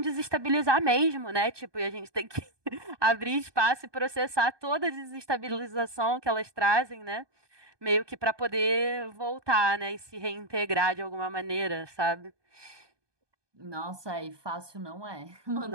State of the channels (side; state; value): left; late; 1.2 ms